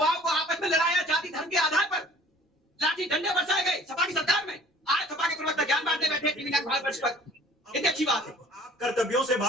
को आपस में लड़ाया, जाति धर्म के आधार पर लाठी डंडे बरसाए गए सभा की सरकार में। आज सभा के प्रवक्ता ज्ञान बांटने बैठे टीवी भारत पर। कितनी अच्छी बात है। आप कर्तव्यों से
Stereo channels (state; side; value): normal; both; correlation 0.51